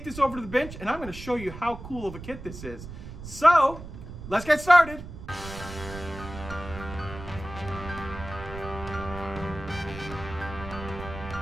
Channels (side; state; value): right; noise; rumble, 12 dB below the sound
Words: this over to the bench and I'm going to show you how cool of a kit this is. So let's get started.